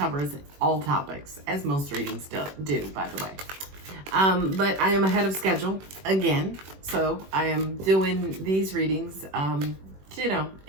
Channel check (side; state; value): left; late; 21 ms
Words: all topics, as most readings do, by the way. But I am ahead of schedule again, so I am doing these readings,